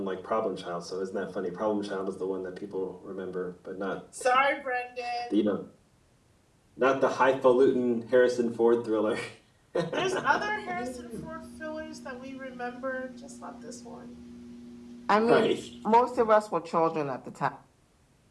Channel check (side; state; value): both; identical; correlation 1.00